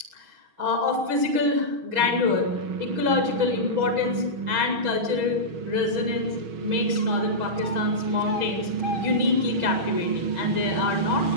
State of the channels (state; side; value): late; left; 6.3 ms